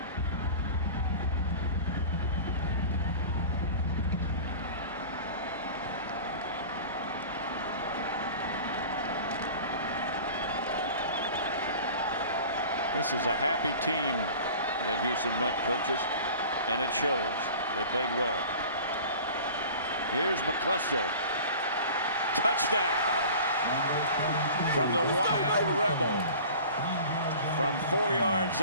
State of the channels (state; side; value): inverted; both; correlation -0.40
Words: This is a happy team that Houston Nutt coaches, and it shows. They played well. Here's McAllister. Touchdown from the Wild Rebel. From 4 yards